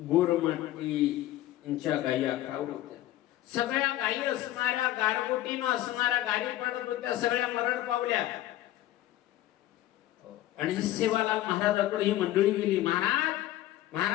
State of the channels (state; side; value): quieter; right; 14.6 dB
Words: गोरमाटीच्या गायी आखावत होत्या. सगळ्या गायी असणाऱ्या गारगोटीनं असणाऱ्या गायी पडत होत्या. सगळ्या मरण पावल्या. आणि सेवालाल महाराजाकडे ही मंडळी गेली. महाराज